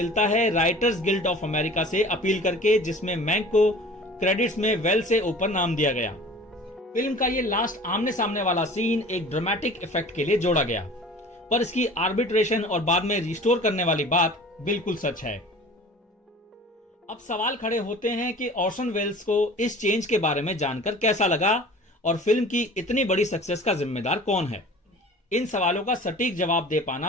है राइटर्स गिल्ड ऑफ अमेरिका से अपील करके, जिसमें मैंक को क्रेडिट्स में वेल्स से ऊपर नाम दिया गया। फिल्म का ये लास्ट आमने सामने वाला सीन एक ड्रामेटिक इफेक्ट के लिए जोड़ा गया, पर इसकी आर्बिट्रेशन और बाद में रिस्टोर करने वाली बात बिल्कुल सच है। अब सवाल खड़े होते हैं कि ऑर्सन वेल्स को इस चेंज के बारे में जानकर कैसा लगा और फिल्म की इतनी बड़ी सक्सेस का जिम्मेदार कौन है। इन सवालों का सटीक जवाब दे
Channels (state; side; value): normal; both; correlation 0.43